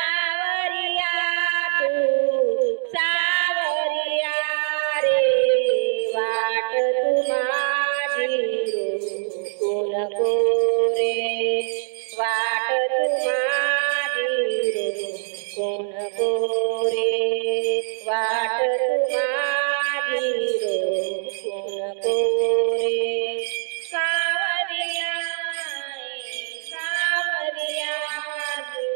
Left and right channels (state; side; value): silent; left; digital silence